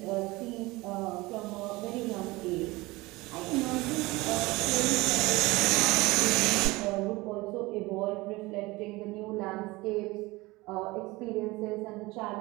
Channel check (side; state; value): left; quieter; 21.6 dB